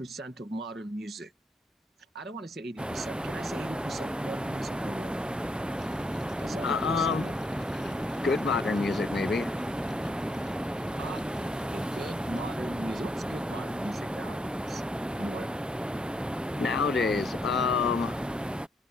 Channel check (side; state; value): both; normal; correlation 0.76